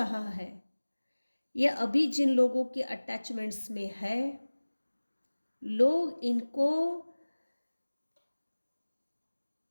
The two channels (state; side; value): inverted; both; correlation -1.00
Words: है, ये अभी जिन लोगों के अटैचमेंट्स में है, लोग इनको,